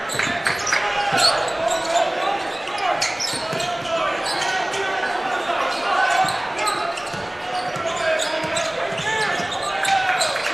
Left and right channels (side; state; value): right; noise; rumble, 28 dB below the sound